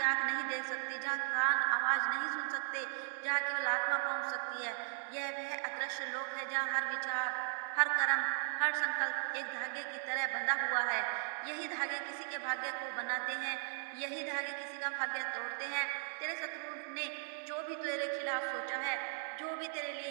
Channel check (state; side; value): silent; left; digital silence